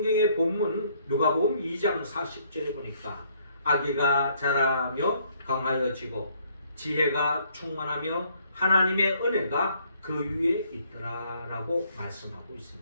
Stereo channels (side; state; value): both; inverted; correlation -0.66